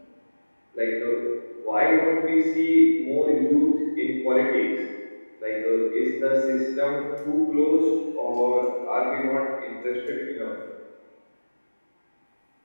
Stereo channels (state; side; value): inverted; both; correlation -1.00